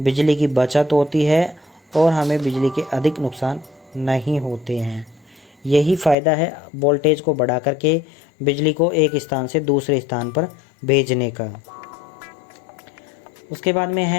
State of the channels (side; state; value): right; drops out; at 6.2 s